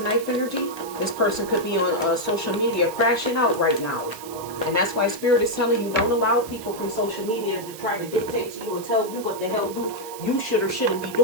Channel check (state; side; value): noise; right; hiss, 15 dB below the sound